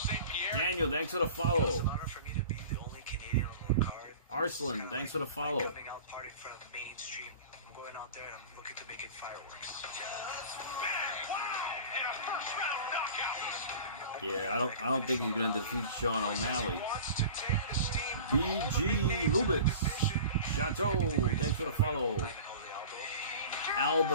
Pierre. Daniel, thanks for the follow. It's an honor for me to be the only Canadian on the card. Arslan, thanks for the follow. Coming out party in front of mainstream. I'm going out there and I'm looking to make it fireworks. And a first round knockout. Yeah, I don't think he's gonna defeat Sean O'Malley. BG Lubitz. Chateau, thanks for the follow. Al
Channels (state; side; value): inverted; both; correlation -0.39